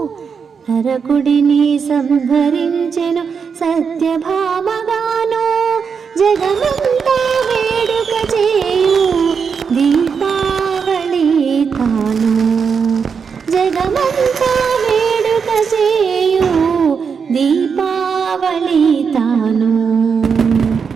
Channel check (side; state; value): left; quieter; 6.1 dB